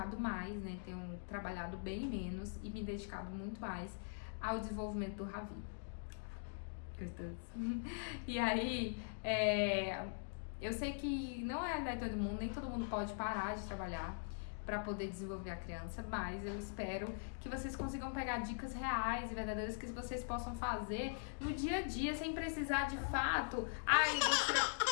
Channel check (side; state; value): right; silent; digital silence